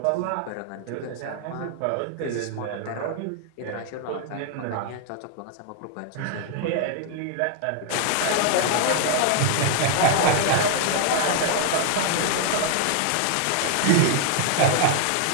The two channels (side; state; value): both; different; correlation 0.00